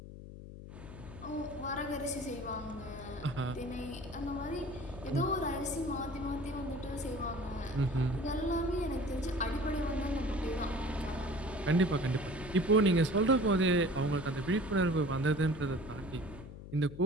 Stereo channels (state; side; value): noise; left; hum, 13 dB below the sound